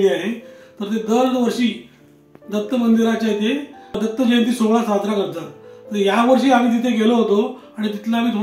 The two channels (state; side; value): identical; both; correlation 1.00